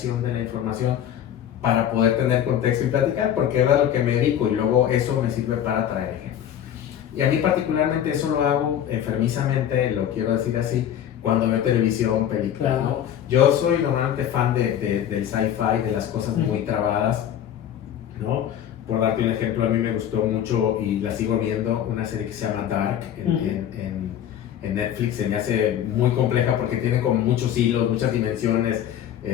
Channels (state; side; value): quieter; right; 10.2 dB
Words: de la información para poder tener contexto y platicar, porque es a lo que me dedico, y luego eso me sirve para traer ejemplos. Y a mí particularmente eso lo hago enfermizamente, lo quiero decir así, cuando veo televisión, películas, claro, ¿no? Yo soy normalmente fan del sci-fi, de las cosas muy trabadas, ¿no? Por darte un ejemplo, a mí me gustó mucho y la sigo viendo, una serie que se llama Dark en Netflix. Se me hace muy compleja porque tiene como muchos hilos, muchas dimensiones,